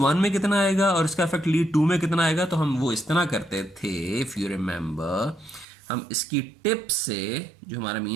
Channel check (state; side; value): drops out; left; at 5.7 s